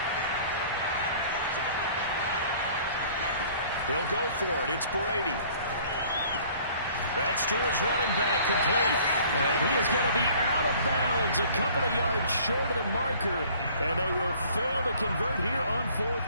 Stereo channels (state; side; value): inverted; both; correlation -0.53